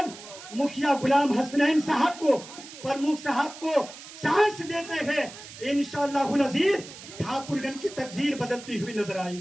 मुखिया गुलाम हसनैन साहब को, प्रमुख साहब को चांस देते हैं, इंशाअल्लाह अजीज ठाकुरगंज की तकदीर बदलती हुई नजर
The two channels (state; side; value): noise; right; hiss, 15 dB below the sound